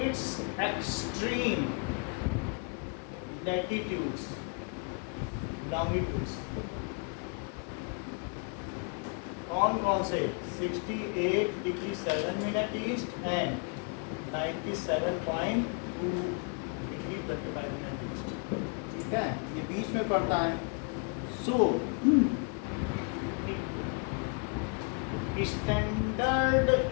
its extreme latitudes, longitudes। कौन से? 68 degree 7 minute east and 97.2 degree 25 minute east. ठीक है, ये बीच में पड़ता है। So standard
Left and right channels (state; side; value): quieter; right; 38.4 dB